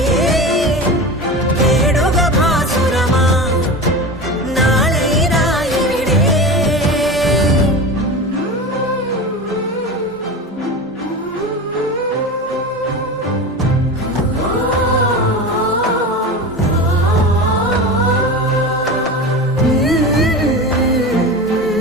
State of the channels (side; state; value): both; normal; correlation 0.28